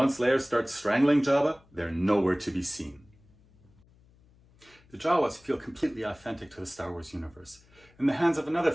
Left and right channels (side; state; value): left; noise; hum, 29 dB below the sound